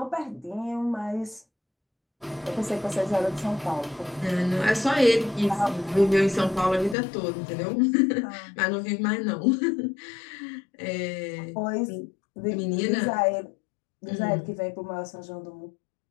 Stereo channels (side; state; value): right; drops out; at 7.0 s